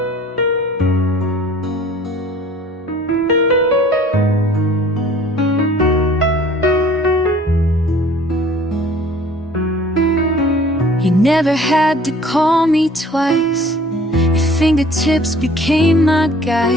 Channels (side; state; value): both; normal; correlation 0.51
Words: You never had to call me twice. Your fingertips became my